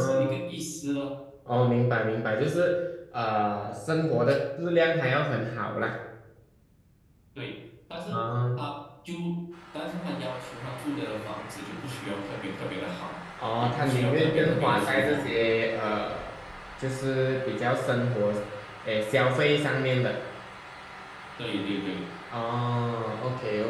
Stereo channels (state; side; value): identical; both; correlation 1.00